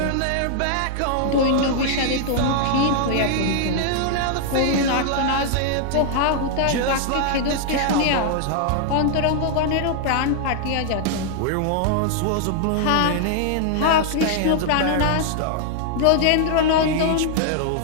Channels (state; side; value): different; both; correlation 0.00